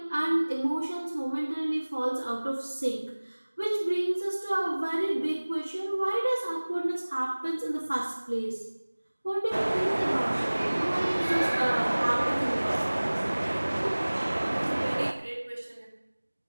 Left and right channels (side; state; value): both; inverted; correlation -1.00